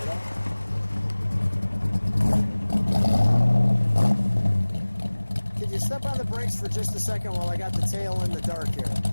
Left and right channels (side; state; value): both; inverted; correlation -1.00